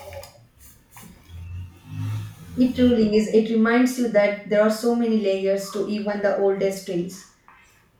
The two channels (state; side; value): identical; both; correlation 1.00